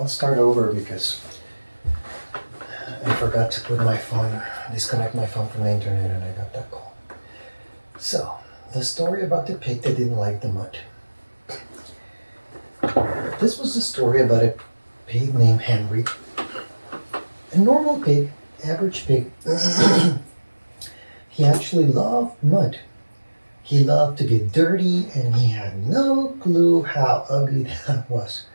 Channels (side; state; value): both; inverted; correlation -1.00